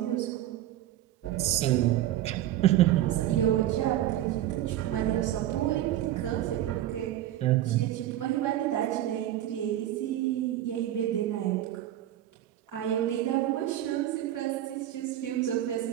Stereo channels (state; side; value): quieter; left; 13.0 dB